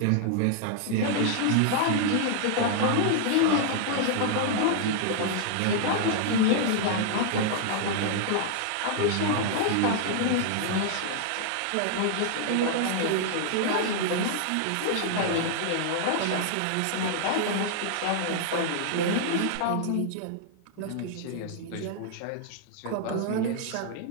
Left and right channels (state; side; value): different; both; correlation -0.01